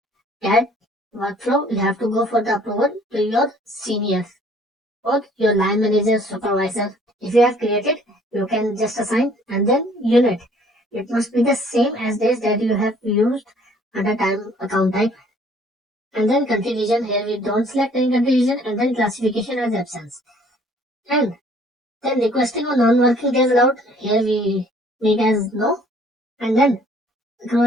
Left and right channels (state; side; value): normal; both; correlation 0.58